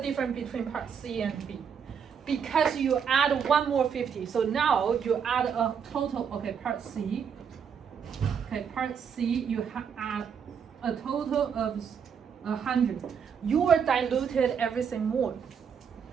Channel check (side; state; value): left; quieter; 7.2 dB